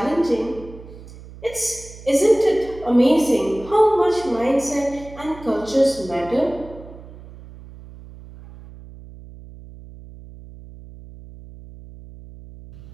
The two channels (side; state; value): right; noise; hum, 17 dB below the sound